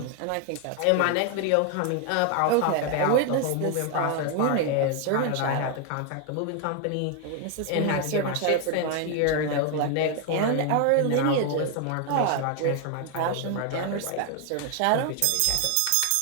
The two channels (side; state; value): both; different; correlation 0.00